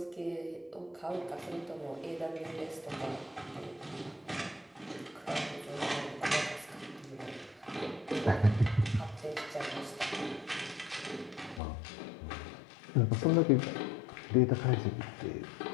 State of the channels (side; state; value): right; drops out; at 11.6 s